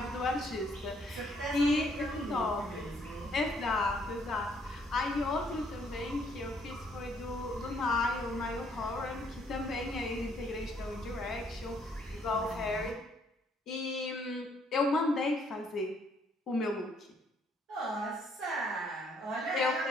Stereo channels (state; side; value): normal; both; correlation 0.67